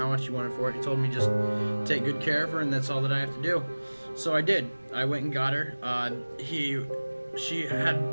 much he wanted for it. He told me just take good care of her, and that's all that I have to do. So I did. I went and got her. He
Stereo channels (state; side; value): inverted; both; correlation -1.00